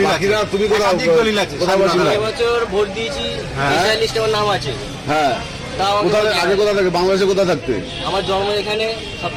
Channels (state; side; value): identical; both; correlation 1.00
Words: আছে, তুমি একাধিক দলিল আছে। এবছর ভোট দিয়েছি, লিস্টে আমার নাম আছে। হ্যাঁ, আগে কোথা থাকে? বাংলাদেশে কোথা থাকতে? আমার জন্ম এখানে,